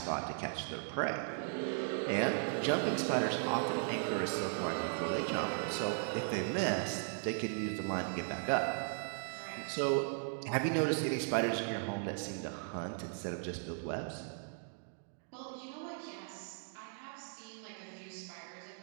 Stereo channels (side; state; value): left; silent; digital silence